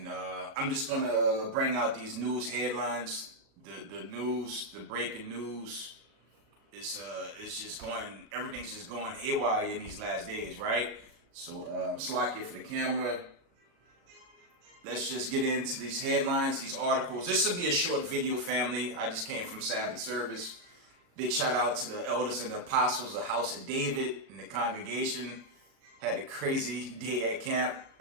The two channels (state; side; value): late; left; 37 ms